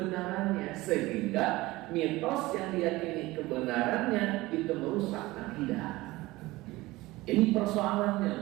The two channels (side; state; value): left; quieter; 19.6 dB